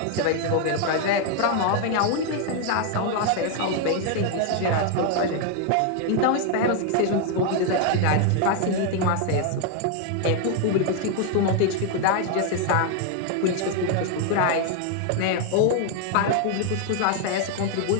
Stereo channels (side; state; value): both; different; correlation 0.00